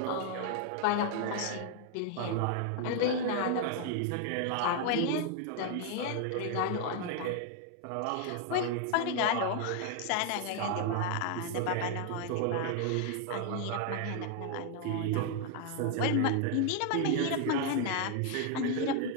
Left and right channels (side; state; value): both; different; correlation 0.00